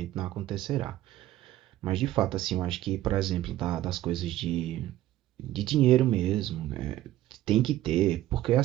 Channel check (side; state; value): left; quieter; 14.2 dB